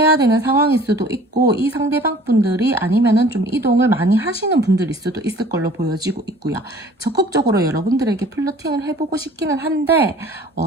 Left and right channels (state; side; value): normal; both; correlation 0.49